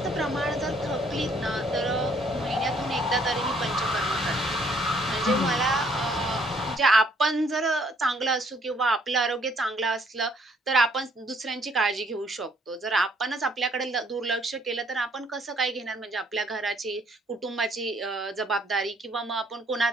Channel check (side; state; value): both; normal; correlation 0.65